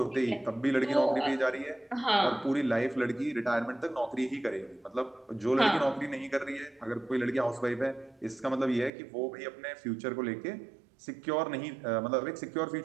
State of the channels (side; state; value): left; drops out; at 8.9 s